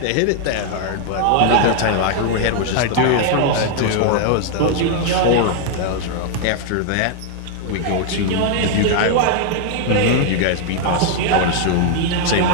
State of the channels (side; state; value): both; different; correlation 0.00